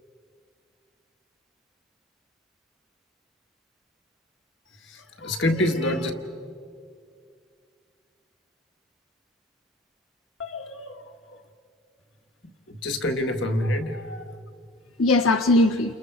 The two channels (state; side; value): normal; both; correlation 0.43